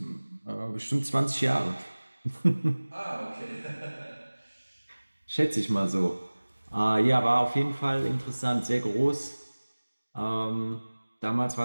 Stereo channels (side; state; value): both; inverted; correlation -1.00